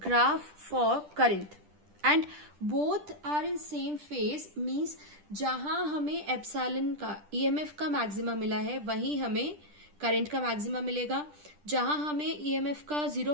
for current, and both are in same phase, means जहां हमें epsilon का EMF का maxima मिला है वहीं हमें current का maxima मिलेगा. जहां हमें ईएमएफ का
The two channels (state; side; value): late; left; 10 ms